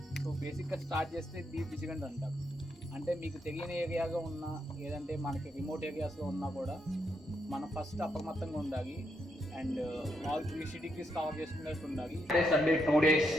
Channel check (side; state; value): both; normal; correlation 0.79